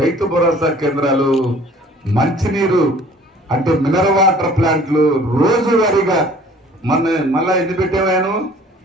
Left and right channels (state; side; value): normal; both; correlation 0.52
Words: భరోసా కేంద్రాలు, మంచినీరు అంటే మినరల్ వాటర్ ప్లాంట్లు రోజువారీగా మళ్ళా ఎన్ని పెట్టేవాను